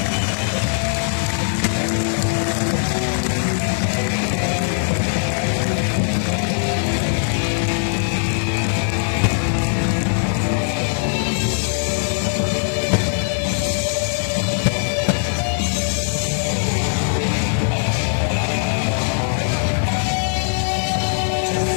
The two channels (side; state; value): right; silent; digital silence